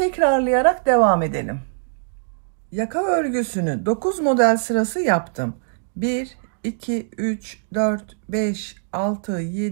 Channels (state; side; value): silent; left; digital silence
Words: devam edelim. Yaka örgüsünü 9 model sırası yaptım. 1, 2, 3, 4, 5, 6,